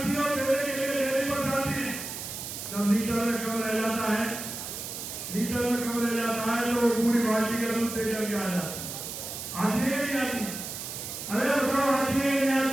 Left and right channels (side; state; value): right; noise; hiss, 7 dB below the sound